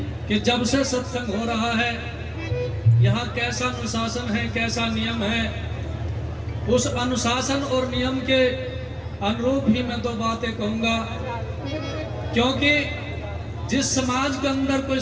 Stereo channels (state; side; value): identical; both; correlation 1.00